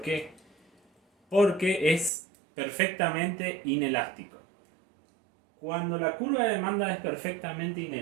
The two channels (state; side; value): drops out; left; at 2.1 s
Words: qué? Porque es perfectamente inelástico. Cuando la curva de demanda es perfectamente